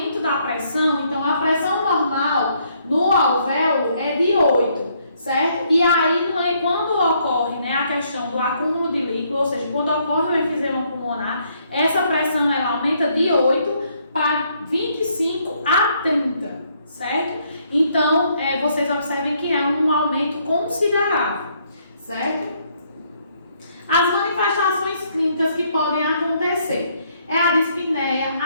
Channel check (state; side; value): inverted; both; correlation -0.70